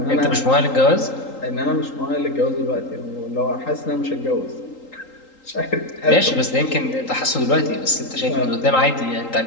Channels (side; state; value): right; late; 3.8 ms